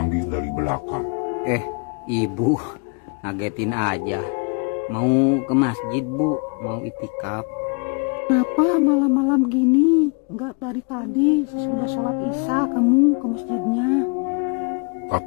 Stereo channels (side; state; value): right; quieter; 34.9 dB